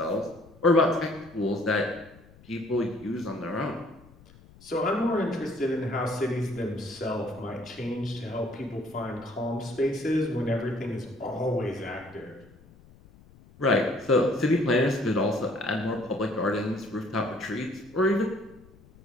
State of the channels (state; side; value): noise; left; rumble, 24 dB below the sound